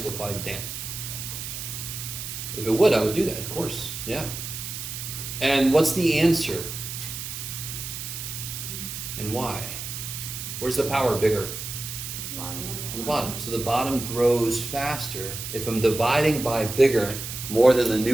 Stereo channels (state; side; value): noise; right; hiss, 7 dB below the sound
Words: damn. If it would, I would do that, of course, yeah. And what's the answer? And why? Where's the power bigger? On the bottom. So the bottom grows faster. If I'm dividing by bigger, more than the